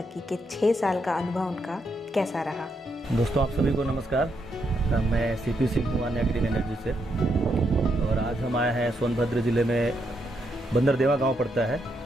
के 6 साल का अनुभव उनका कैसा रहा। दोस्तों, आप सभी को नमस्कार। मैं CP सिंह हूँ आन्या ग्रीन एनर्जी से, और आज हम आए हैं सोनभद्र ज़िले में बंदरदेवा गांव पड़ता है।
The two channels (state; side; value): normal; both; correlation 0.79